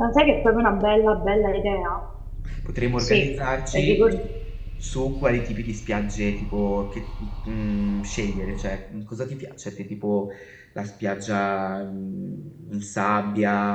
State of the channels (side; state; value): both; identical; correlation 1.00